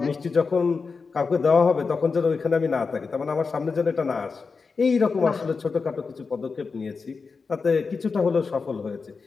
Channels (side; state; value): right; quieter; 4.8 dB